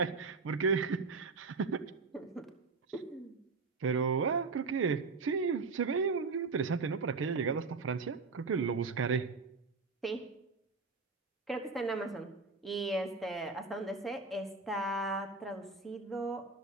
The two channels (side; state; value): left; quieter; 4.3 dB